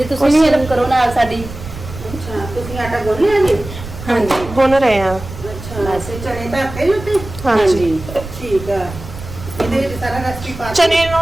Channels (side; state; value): right; noise; rumble, 12 dB below the sound